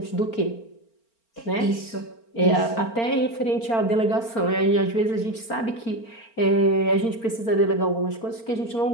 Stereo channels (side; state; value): right; late; 4.4 ms